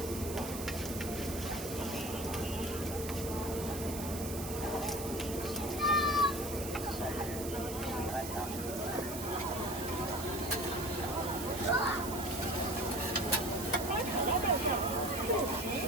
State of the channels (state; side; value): noise; right; hiss, 9 dB below the sound